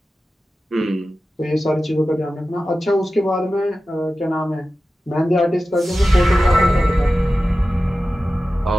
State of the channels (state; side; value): normal; both; correlation 0.94